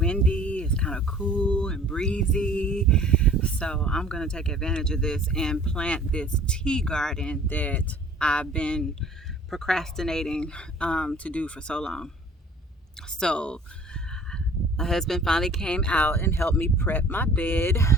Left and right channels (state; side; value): normal; both; correlation 0.50